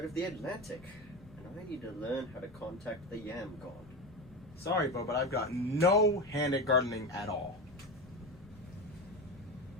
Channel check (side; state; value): both; normal; correlation 0.21